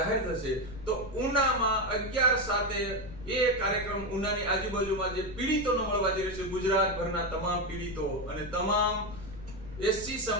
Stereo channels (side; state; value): left; noise; rumble, 14 dB below the sound